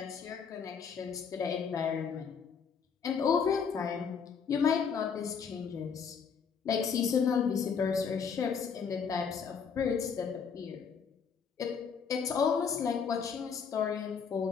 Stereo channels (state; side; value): quieter; right; 6.4 dB